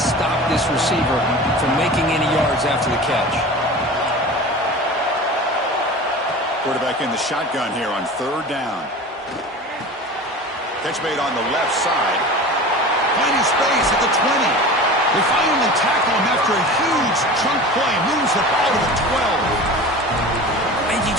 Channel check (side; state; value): both; normal; correlation 0.35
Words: stop this receiver from making any yards after the catch. Quarterback in the shotgun here on 3rd down. Catch made on the left side. Finding space at the 20. They finally tackle him after a huge chunk play. Moves the ball to the 12. And you